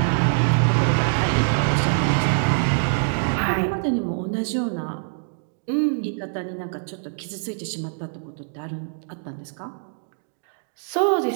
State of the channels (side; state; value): left; silent; digital silence